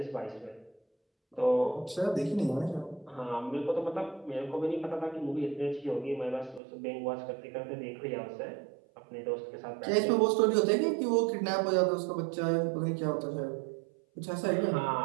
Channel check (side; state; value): left; drops out; at 6.6 s